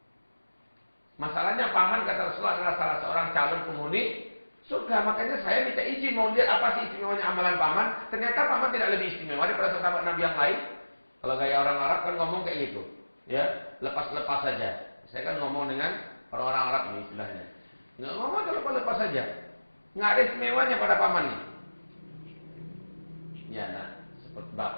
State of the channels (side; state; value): both; inverted; correlation -1.00